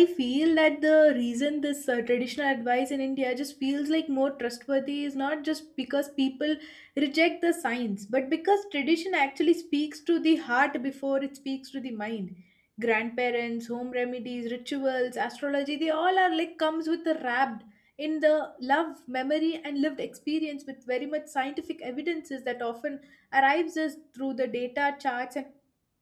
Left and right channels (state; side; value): identical; both; correlation 1.00